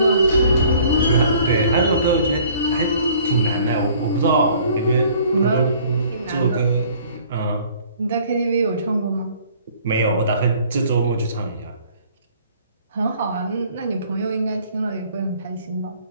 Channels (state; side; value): inverted; both; correlation -0.55